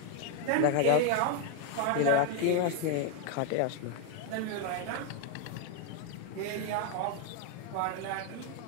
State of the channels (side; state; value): both; different; correlation 0.00